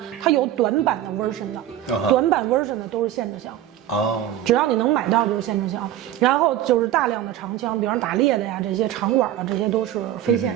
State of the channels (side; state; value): left; quieter; 12.1 dB